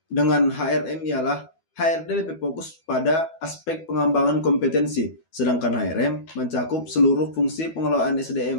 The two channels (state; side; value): late; right; 12 ms